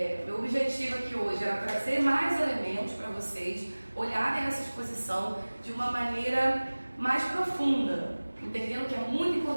meu objetivo aqui hoje era trazer mais elementos para vocês olharem essa exposição de uma maneira mais profunda, entendendo que é muito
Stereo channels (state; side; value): inverted; both; correlation -1.00